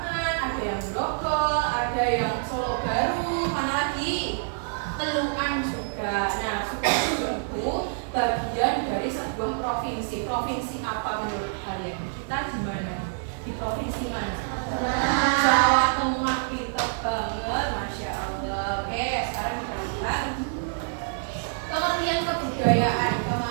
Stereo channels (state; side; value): silent; left; 60 dB below the other